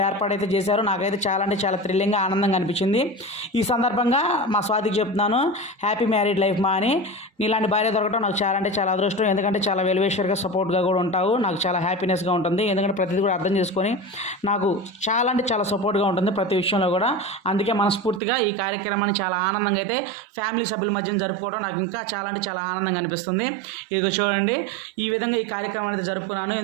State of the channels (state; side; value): drops out; left; at 18.2 s